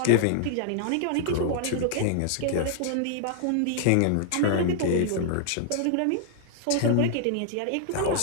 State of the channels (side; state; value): both; different; correlation 0.00